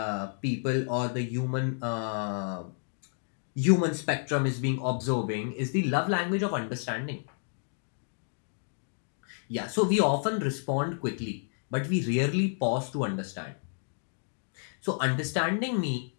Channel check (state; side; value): silent; right; digital silence